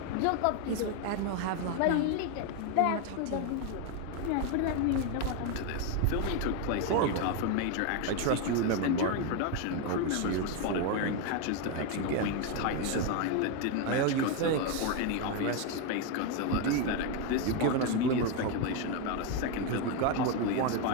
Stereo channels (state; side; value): different; both; correlation 0.02